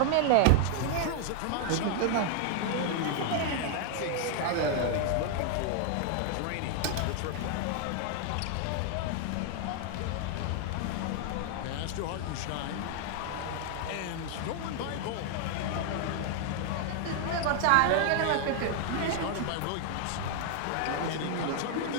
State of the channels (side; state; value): both; different; correlation 0.00